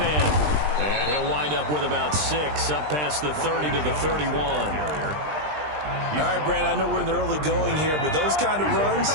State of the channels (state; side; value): late; left; 20 ms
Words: And he'll wind up with about 6, up past the 30 to the 31. All right, Brandon, I know we're in the early going here, but those kind of runs,